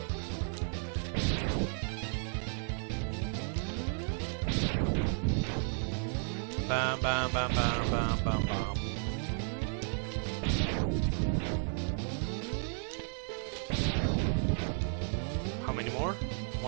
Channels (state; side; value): silent; left; 55 dB below the other